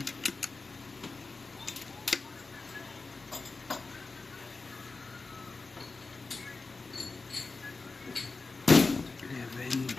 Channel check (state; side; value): quieter; right; 3.9 dB